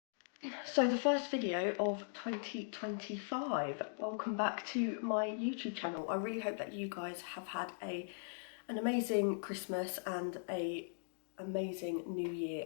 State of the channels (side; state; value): right; silent; digital silence